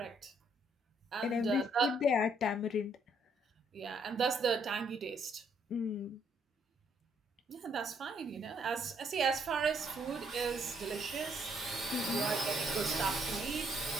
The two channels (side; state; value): both; normal; correlation 0.69